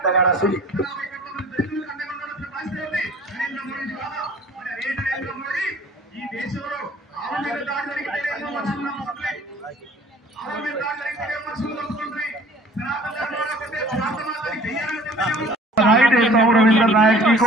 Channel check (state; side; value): normal; both; correlation 0.50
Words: नगारा सुनिए। बधाई देता हूँ रविंद्र नायक जी